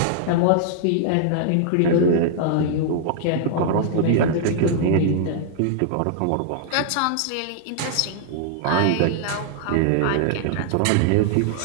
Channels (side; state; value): both; different; correlation -0.01